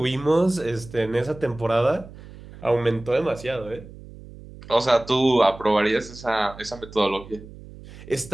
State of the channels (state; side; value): noise; right; hum, 17 dB below the sound